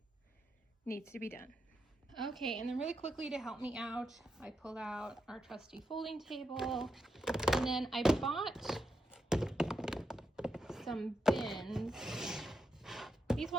needs to be done. Okay, and then really quickly to help me out, I pulled out our trusty folding table, and then I bought some bins. These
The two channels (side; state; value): both; normal; correlation 0.84